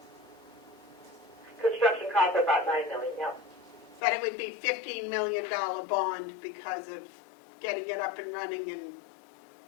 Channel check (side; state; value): right; drops out; at 4.0 s